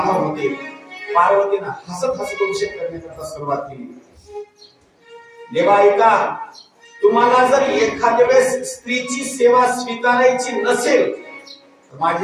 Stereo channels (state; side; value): identical; both; correlation 1.00